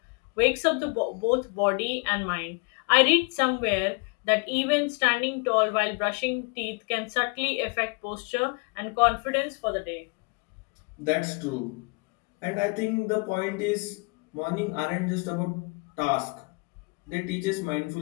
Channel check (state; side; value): quieter; right; 31.9 dB